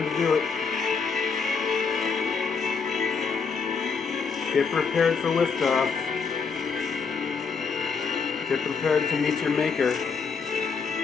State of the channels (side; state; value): right; quieter; 5.3 dB